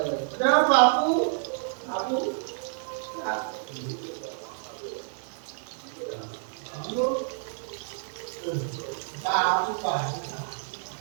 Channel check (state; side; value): silent; left; digital silence